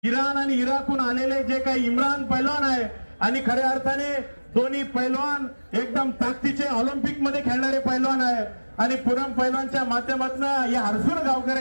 Iran आणि इराकहून आलेले जे काही इम्रान पैलवान आहे आणि खऱ्या अर्थाने दोन्ही पैलवान एकदम ताकदीचे ऑलिम्पिक मध्ये खेळणारे पैलवान आहे आणि पूनम पैलवानच्या माध्यमातून या हर्सुल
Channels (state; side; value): inverted; both; correlation -1.00